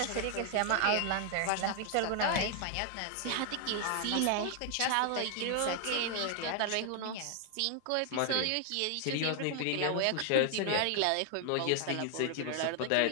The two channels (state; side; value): different; both; correlation 0.00